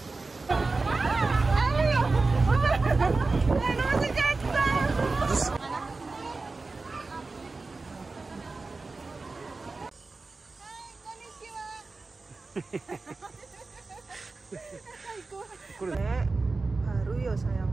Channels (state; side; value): quieter; left; 3.7 dB